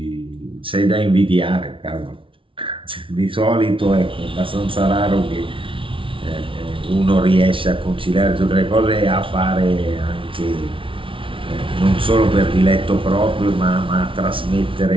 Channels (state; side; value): late; left; 0.25 ms